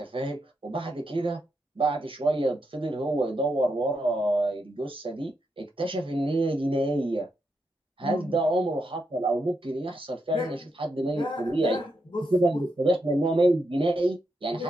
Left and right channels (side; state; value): both; normal; correlation 0.83